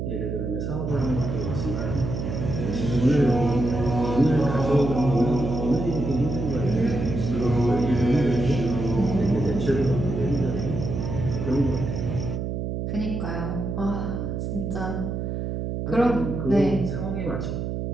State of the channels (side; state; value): right; noise; hum, 3 dB below the sound